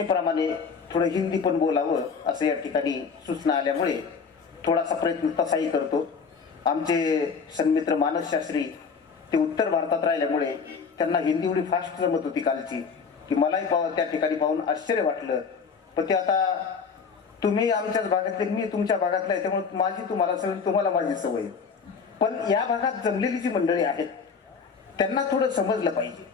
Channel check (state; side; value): quieter; right; 5.6 dB